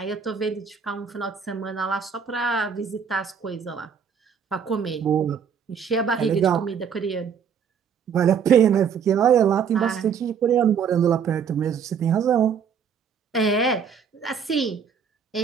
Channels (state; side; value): quieter; left; 6.9 dB